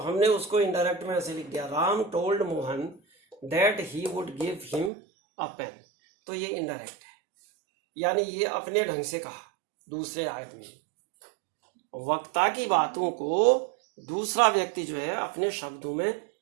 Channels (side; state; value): left; drops out; at 4.9 s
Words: उसको इनडायरेक्ट में ऐसे लिख दिया, Ram told Mohan that he would give him a pen. तो ये इनडायरेक्ट है, यानी ये अपने ढंग से कहा दूसरे आदमी। वक्ता की बातों को दूसरा व्यक्ति जो है अपने शब्दों में